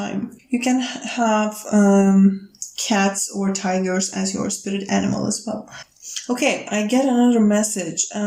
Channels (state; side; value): identical; both; correlation 1.00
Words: You can have cats or tigers as your spirit animal as well. Okay, I get another message.